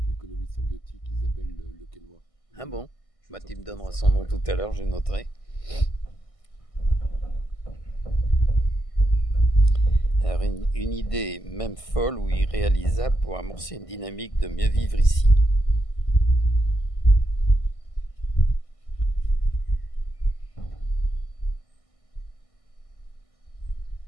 L'économie symbiotique, Isabelle Le Quesnoy. Ah bon? Bah, tu me donneras son nom tout à l'heure, je noterai. Alors une idée, même folle ou irréalisable, pour amorcer une dynamique de mieux vivre ici.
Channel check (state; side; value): late; right; 1.6 ms